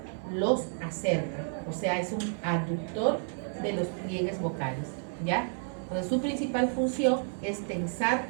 los acerca. O sea, es un aductor de los pliegues vocales, ¿ya? Entonces, su principal función es tensar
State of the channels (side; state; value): left; silent; digital silence